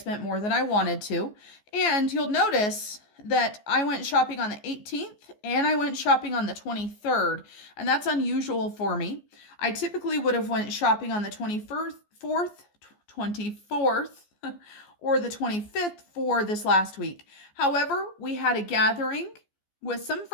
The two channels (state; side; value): late; right; 14 ms